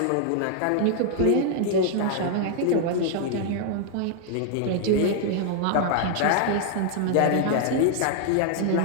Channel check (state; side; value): different; both; correlation 0.00